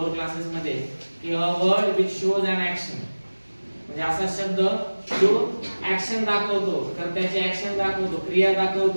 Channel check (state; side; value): inverted; both; correlation -1.00